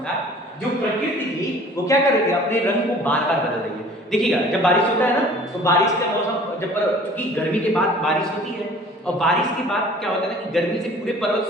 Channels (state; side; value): normal; both; correlation 0.49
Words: था। जो प्रकृति थी वो क्या कर रही थी, अपने रंग को बार बार बदल रही है। देखिएगा जब बारिश होता है ना, तो बारिश का मौसम जब क्योंकि गर्मी के बाद बारिश होती है, और बारिश के बाद क्या होता है ना कि गर्मी से पूरे पर्वत